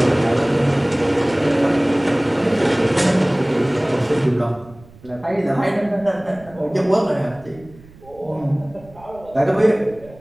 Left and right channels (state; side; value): noise; right; rumble, 23 dB below the sound